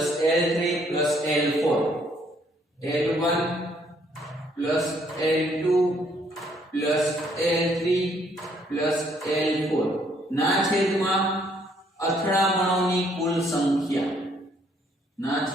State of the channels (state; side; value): normal; both; correlation 0.67